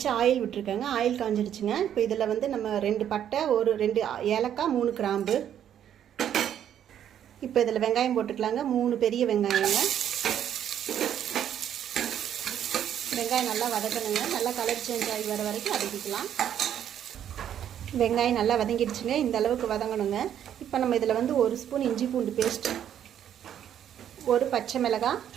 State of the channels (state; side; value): quieter; left; 9.9 dB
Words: ஆயில் விட்டுருக்கேங்க। ஆயில் காஞ்சிடுச்சுங்க। இப்போ இதில் வந்து நம்ம 2 பட்டை, ஒரு 2 ஏலக்காய், 3 கிராம்பு। இப்போ இதில் வெங்காயம் போட்டுக்கலாங்க। 3 பெரிய வெங்காயங்க। வெங்காயம் நல்லா வதக்கணுங்க। நல்லா கலர் சேஞ்ச் ஆகி வர வரைக்கும் வதக்கிக்கலாம்। வெங்காயம் நல்லா வதங்கிடுச்சுங்க। இந்த அளவுக்கு வதங்கணுங்க। இப்போ நம்ம இதில் வந்து 1 ஸ்பூன் இஞ்சி பூண்டு பேஸ்ட், ஒரு பச்சை மிளகாய்,